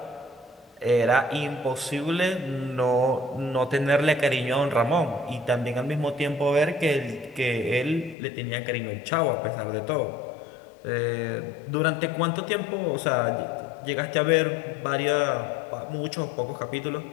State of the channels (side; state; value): right; drops out; at 8.2 s